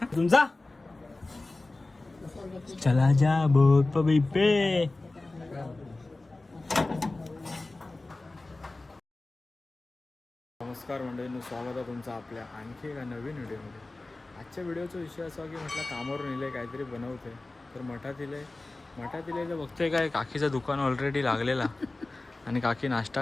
तुमचा चला जा बोट पे पे. नमस्कार मंडळींनो, स्वागत आहे तुमचं आपल्या आणखी एका नवीन व्हिडिओमध्ये. आजच्या व्हिडिओचा विषय असा की म्हटलं कामावरून इले काहीतरी बनवते तर मठात इले तर बघते काय काकीचं दुकान ऑलरेडी लागलेला आणि काकी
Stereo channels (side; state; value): right; quieter; 3.1 dB